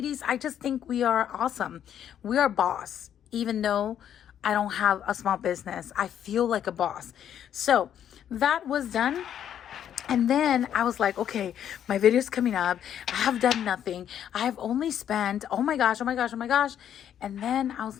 I just think we are awesome. We are boss, even though I don't have a small business. I feel like a boss. So that was done. And then I was like, okay, my video's coming up. I have done nothing. I have only spent, oh my gosh, oh my gosh, oh my gosh. And then I was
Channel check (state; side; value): quieter; right; 9.8 dB